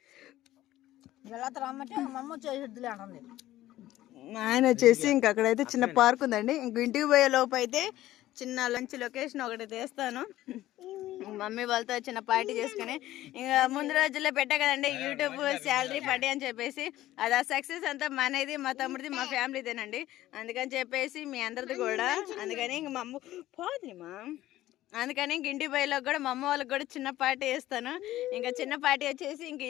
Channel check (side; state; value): right; quieter; 14.9 dB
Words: ఆయన వచ్చేసి ఇంక అక్కడైతే చిన్న పార్క్ ఉందండి. ఇంక ఇంటికి పోయే లోపు అయితే చిన్న లంచ్ లొకేషన్ ఒకటి తీస్తాను. మమ్మీ వాళ్ళతో చిన్న పార్టీ చేసుకుని ఇంకా ముందు రోజుల్లో పెట్టా కదండి యూట్యూబ్ శాలరీ పార్టీ అని చెప్పేసి. అది ఆ సక్సెస్ అంతా మనది, మా తమ్ముడిది, మా ఫ్యామిలీదేనండి. అందుకని చెప్పేసి మీ అందరిది కూడా. అందుకని ఇంక మా అమ్మ పోదుమా, అందుకని ఇంక ఇంటి బయలోకి కూడా మా అమ్మ వాళ్ళకి కూడా చిన్న పార్టీ చేస్తాను. ఇంకా చిన్న పార్టీ వచ్చేసి ఇంక